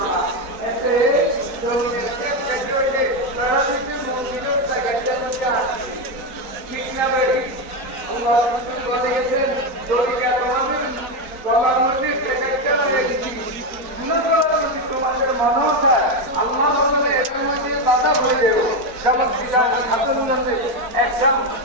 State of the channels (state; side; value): late; left; 3.9 ms